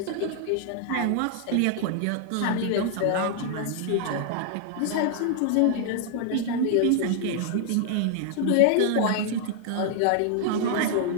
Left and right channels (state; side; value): different; both; correlation 0.00